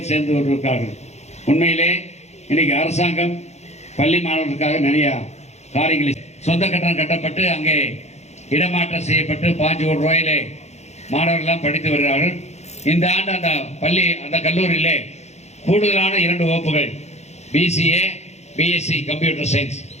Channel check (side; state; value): right; late; 0.32 ms